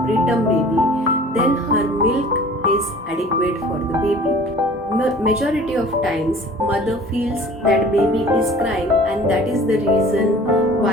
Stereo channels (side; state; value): both; normal; correlation 0.46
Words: preterm baby, then her milk is adequate for the baby. Majority of times mother feels that baby is crying, and that is the reason